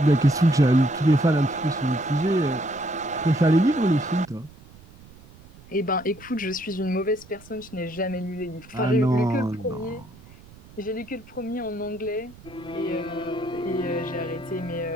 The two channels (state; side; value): noise; right; rumble, 22 dB below the sound